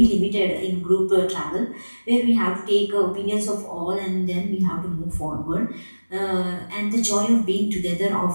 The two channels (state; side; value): inverted; both; correlation -1.00